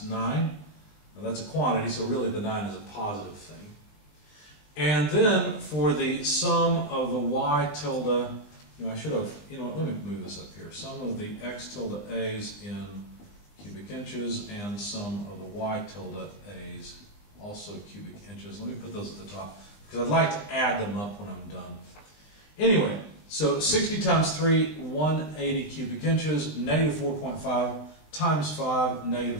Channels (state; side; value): late; right; 19 ms